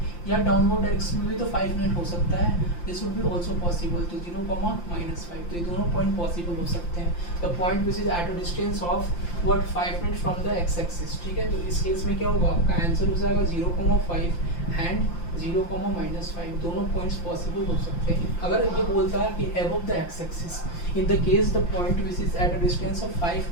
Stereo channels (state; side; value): late; right; 5.8 ms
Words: या डाउनवर्ड डायरेक्शन में भी तो 5 यूनिट हो सकता है, this would be also possible. तो 0,-5, तो ये दोनों पॉइंट पॉसिबल हो सकते हैं। The point which is eight a distance of what 5 unit from the x axis. ठीक है, तो इस केस में क्या होगा, आपका आंसर हो जाएगा 0,5 एंड 0,-5, दोनों पॉइंट्स पॉसिबल हो सकते हैं। अगर ये बोलता है कि above the x axis, in the case the point which is at a distance of 5